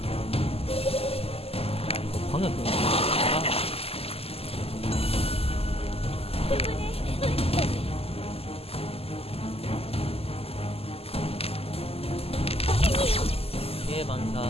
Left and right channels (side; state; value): right; late; 0.29 ms